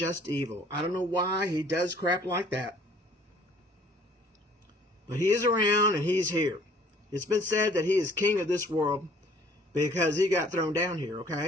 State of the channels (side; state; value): both; normal; correlation 0.56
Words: evil. I don't know why he does crap like that. But he is around and he's here. It's been said that he is king of this world because he got thrown down here,